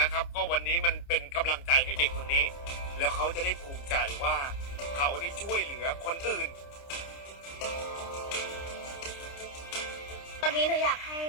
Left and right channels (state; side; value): late; right; 29 ms